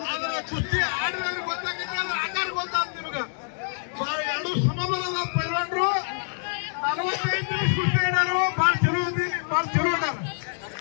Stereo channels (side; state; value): right; silent; 61 dB below the other